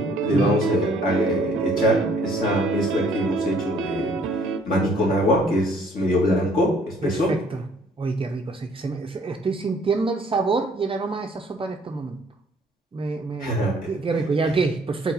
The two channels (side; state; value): both; normal; correlation 0.60